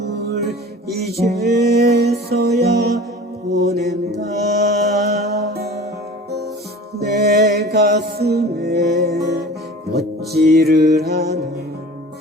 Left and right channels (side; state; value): both; normal; correlation 0.41